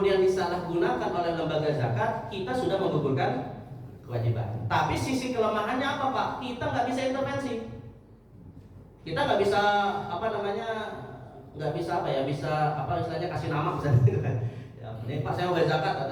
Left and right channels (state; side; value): identical; both; correlation 1.00